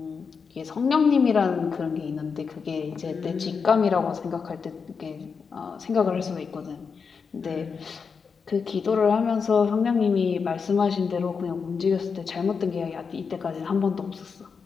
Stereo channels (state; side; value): quieter; right; 5.6 dB